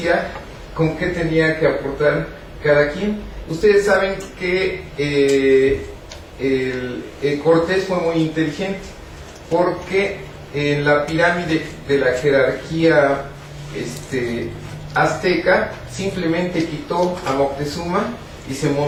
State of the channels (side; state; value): both; identical; correlation 1.00